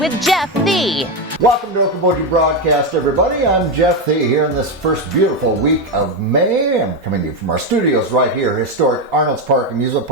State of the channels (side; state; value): both; normal; correlation 0.09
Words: Jeff Thee. Welcome to Okoboji Broadcast, everybody. I'm Jeff Thee here in this first beautiful week of May. I'm coming to you from our studios right here, historic Arnold's Park Amusement